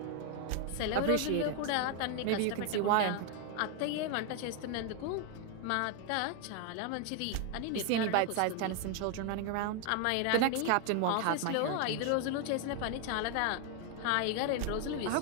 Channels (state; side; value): different; both; correlation 0.00